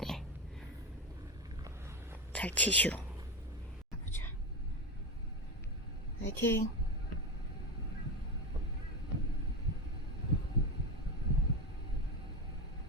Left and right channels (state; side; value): normal; both; correlation 0.18